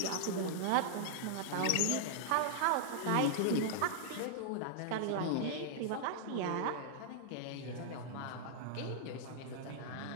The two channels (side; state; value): both; different; correlation -0.01